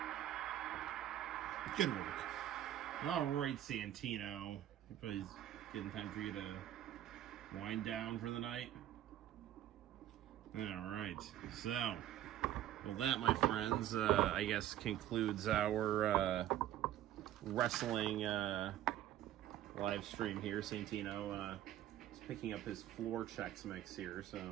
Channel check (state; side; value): quieter; left; 12.5 dB